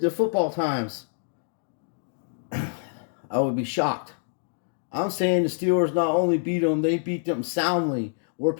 football times, I would be shocked. I'm saying the Steelers not only beat them, they beat them soundly. Where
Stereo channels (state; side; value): silent; right; digital silence